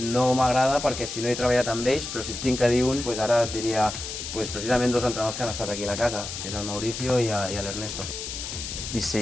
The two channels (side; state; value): left; noise; hiss, 7 dB below the sound